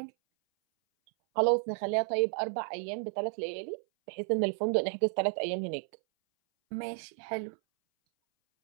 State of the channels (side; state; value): left; silent; 56 dB below the other